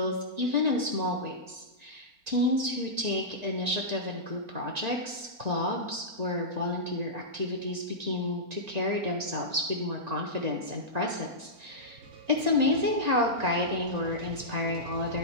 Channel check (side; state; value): left; late; 4.4 ms